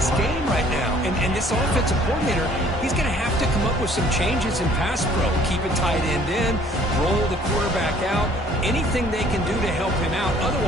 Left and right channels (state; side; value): normal; both; correlation 0.57